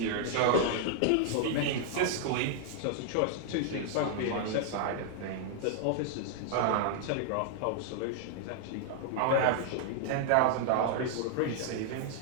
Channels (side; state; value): both; different; correlation 0.00